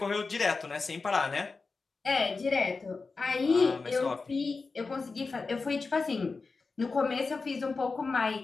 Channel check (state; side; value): quieter; right; 4.2 dB